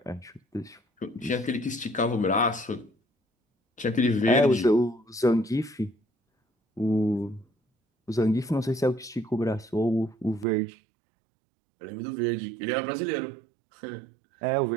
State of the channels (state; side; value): drops out; left; at 10.5 s